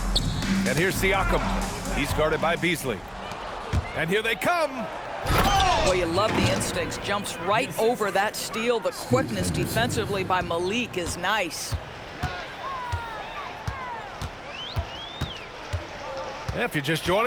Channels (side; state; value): both; identical; correlation 1.00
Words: And here's Siakam. He's guarded by Beasley. And here they come. Boy, you love the instincts. Jumps right over that steal. The quickness defensively by Myleague is nice. If you're just